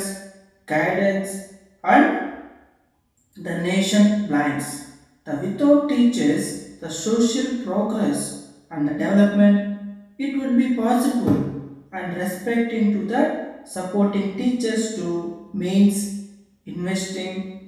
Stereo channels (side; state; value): both; identical; correlation 1.00